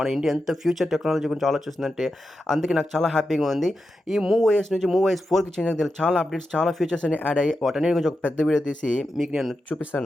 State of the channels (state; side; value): normal; both; correlation 0.89